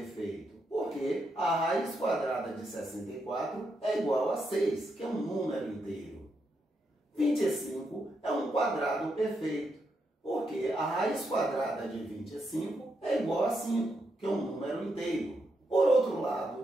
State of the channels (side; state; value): both; normal; correlation 0.81